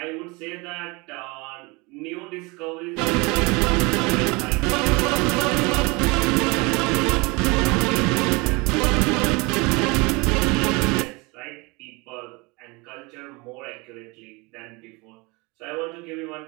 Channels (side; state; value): left; quieter; 26.6 dB